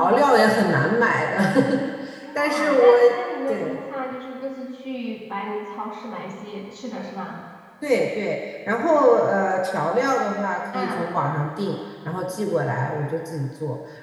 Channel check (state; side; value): identical; both; correlation 1.00